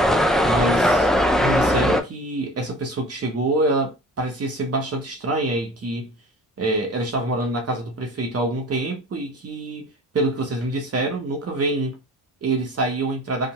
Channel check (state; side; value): normal; both; correlation 0.44